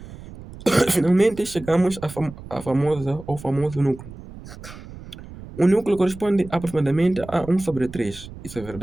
Finalmente chegamos à famosa ou famoso núcleo. O núcleo corresponde aproximadamente a 1/3. Isso é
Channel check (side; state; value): right; noise; rumble, 15 dB below the sound